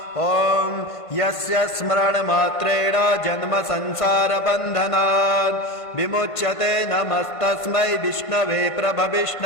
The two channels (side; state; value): right; late; 1.5 ms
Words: ॐ यस्य स्मरणमात्रेण जन्म संसार बन्धनात् विमुच्यते नमस्तस्मै विष्णवे